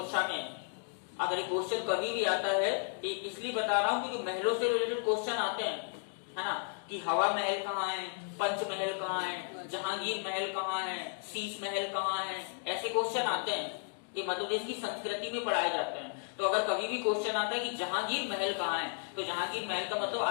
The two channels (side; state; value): right; silent; 55 dB below the other